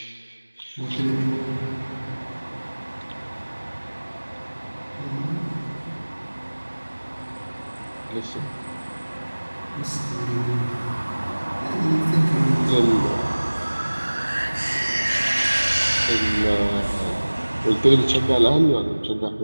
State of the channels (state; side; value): inverted; both; correlation -1.00